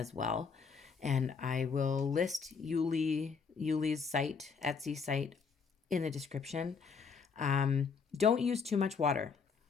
well. And I will list Iuile's site, Etsy site, in the description. Don't use too much water.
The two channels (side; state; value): right; quieter; 5.5 dB